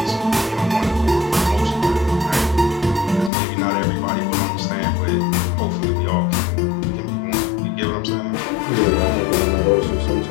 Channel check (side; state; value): right; drops out; at 3.3 s